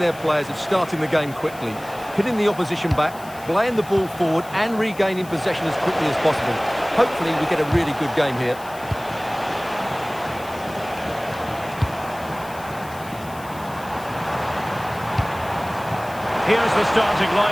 players of starting the game quickly, hitting the opposition back, playing the ball forward and regaining possession as quickly as possible. Hopefully we get a really good game here. Here's the starting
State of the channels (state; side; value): noise; left; hiss, 20 dB below the sound